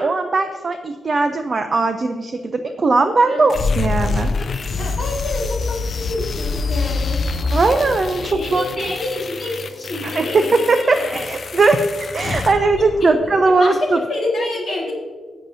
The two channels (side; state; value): both; normal; correlation 0.86